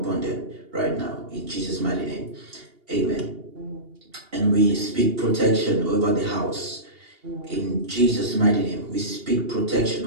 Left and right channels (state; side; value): late; left; 2.8 ms